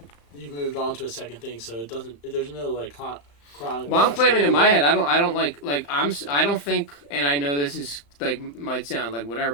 you've moved on to a second thing, so it doesn't. There's no like chronic. Well, I'm claiming in my head. I don't like I don't think, and I know this is like might sound like whatever,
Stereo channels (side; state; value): right; late; 35 ms